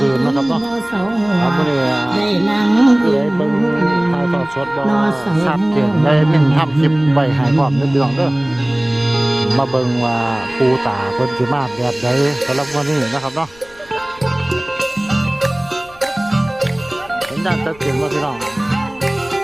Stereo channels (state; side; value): noise; left; rumble, 25 dB below the sound